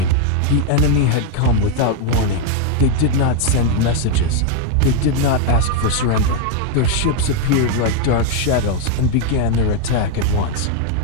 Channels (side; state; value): both; different; correlation 0.01